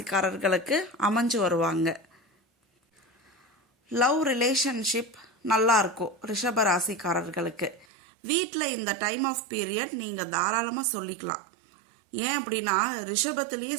அமைஞ்சு வருவாங்க. லவ் ரிலேஷன்ஷிப் நல்லாயிருக்கும் ரிஷப ராசிக்காரர்களுக்கு. வீட்டில் இந்த டைம் ஆஃப் பீரியட் நீங்கள் தாராளமாக சொல்லிக்கலாம். ஏன் அப்படின்னா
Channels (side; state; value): left; drops out; at 7.9 s